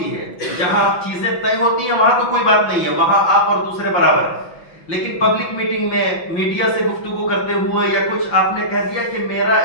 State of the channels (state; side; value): late; right; 5.7 ms